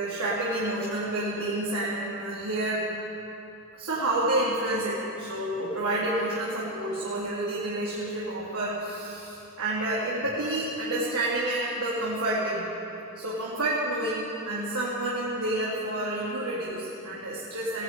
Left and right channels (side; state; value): both; normal; correlation 0.08